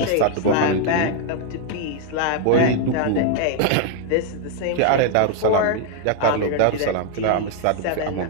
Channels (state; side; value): different; both; correlation 0.00